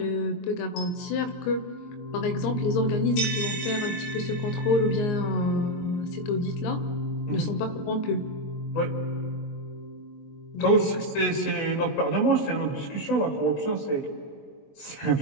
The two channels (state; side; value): late; right; 22 ms